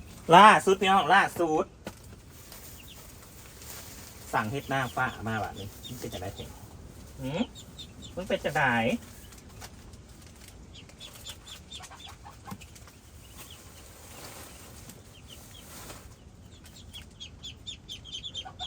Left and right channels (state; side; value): identical; both; correlation 1.00